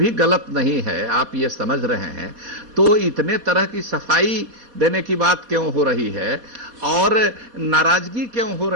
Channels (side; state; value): left; late; 4.2 ms